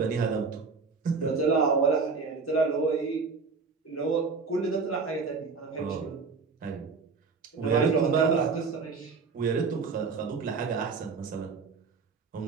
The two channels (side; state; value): left; quieter; 4.8 dB